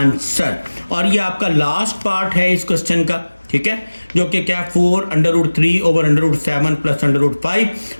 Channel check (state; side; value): inverted; both; correlation -1.00